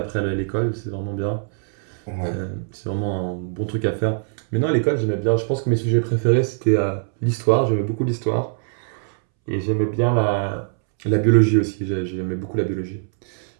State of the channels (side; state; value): left; silent; 64 dB below the other